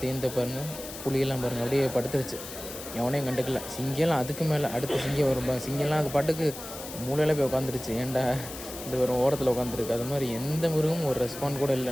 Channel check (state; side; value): noise; left; hiss, 11 dB below the sound